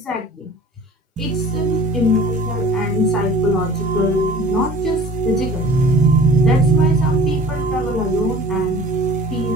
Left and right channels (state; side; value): normal; both; correlation 0.45